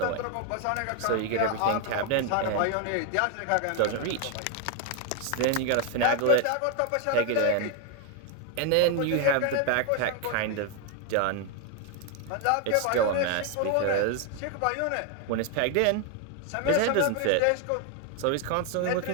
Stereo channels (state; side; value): different; both; correlation 0.01